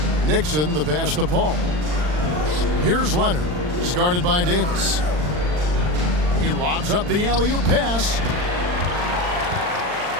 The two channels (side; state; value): left; late; 39 ms